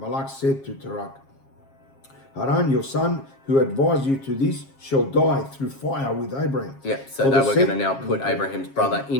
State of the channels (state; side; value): late; right; 7.4 ms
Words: said to Tarak, Haran, your son, who advised you to this, shall die through fire with Abraham. Yeah, so they were going to now put Abraham's brother